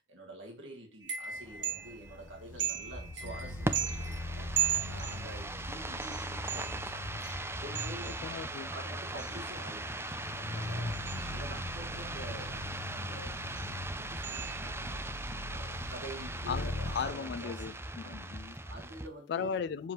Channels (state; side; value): normal; both; correlation 0.21